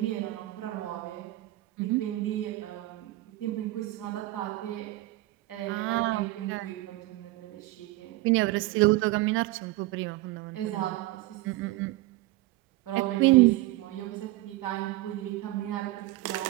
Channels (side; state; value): left; quieter; 18.4 dB